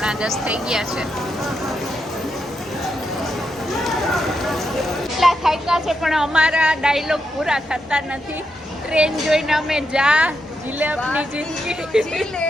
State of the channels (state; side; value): normal; both; correlation 0.84